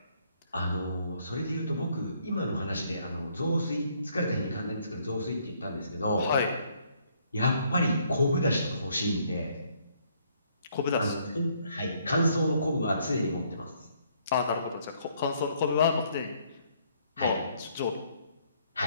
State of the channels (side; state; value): both; inverted; correlation -0.67